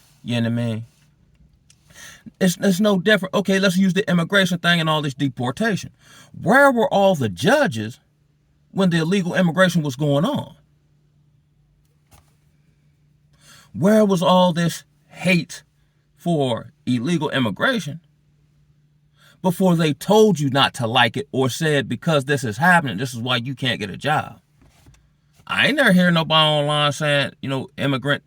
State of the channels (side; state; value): both; identical; correlation 1.00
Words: you know what I mean? It's no different. Okay, let's use the immigration thing and all this deportation. Where were all the judges when the illegal immigration was going on? Where was all this hate for illegal immigration before they told you not to like it or said, because this is happening, this is why you can't get a job? I ain't never hear nobody online saying,